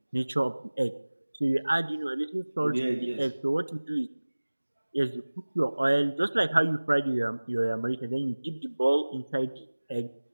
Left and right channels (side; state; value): both; inverted; correlation -1.00